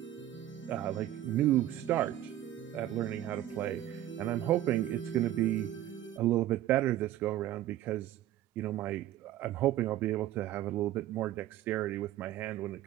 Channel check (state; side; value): quieter; left; 13.2 dB